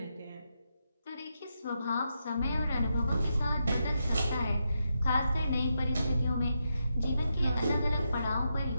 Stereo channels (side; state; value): both; inverted; correlation -0.84